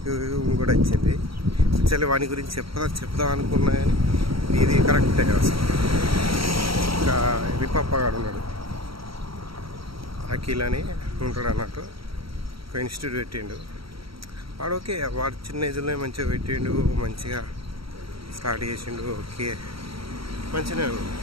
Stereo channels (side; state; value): left; late; 0.75 ms